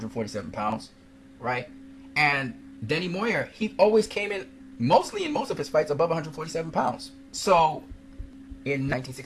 pounds, right? And Danny Moyer, he always came in mostly in most of his fights above 147 pounds. So in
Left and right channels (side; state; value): both; identical; correlation 1.00